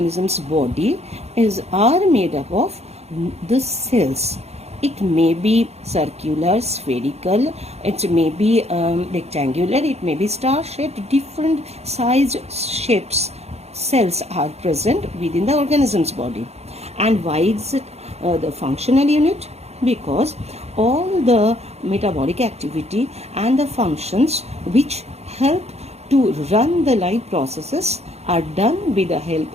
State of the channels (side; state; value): left; late; 0.31 ms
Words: body are made up of the cells. It may be circular, spherical, it may be rectangular, it may be star-shaped, different size shapes. Cells are present within the organism's body. And why is it the functional unit? Because all the metabolic activity and the functions which help to run the life processes are done with the help